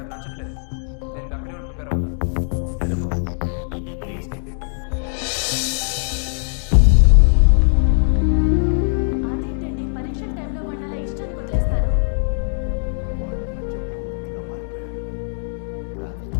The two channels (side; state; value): right; silent; digital silence